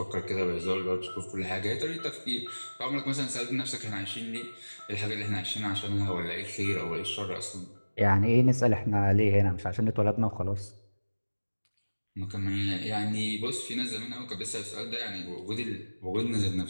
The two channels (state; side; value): inverted; both; correlation -1.00